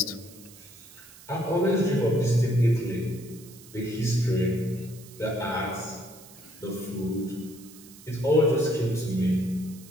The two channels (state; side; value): noise; right; hiss, 20 dB below the sound